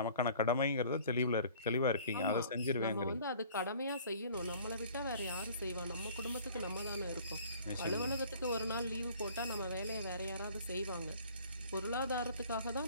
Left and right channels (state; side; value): inverted; both; correlation -0.51